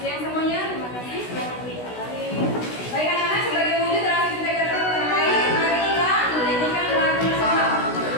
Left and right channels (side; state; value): right; late; 16 ms